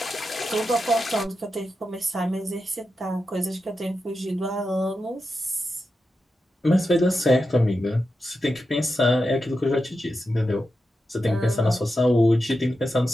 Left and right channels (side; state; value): both; normal; correlation 0.89